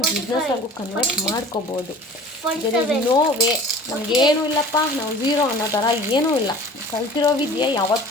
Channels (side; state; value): both; normal; correlation 0.43